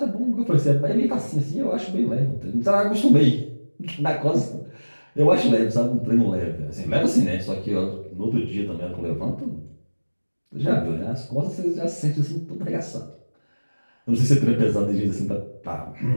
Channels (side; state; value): both; inverted; correlation -1.00